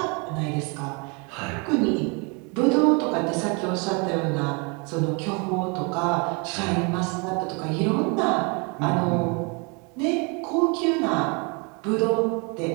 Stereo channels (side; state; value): left; quieter; 32.0 dB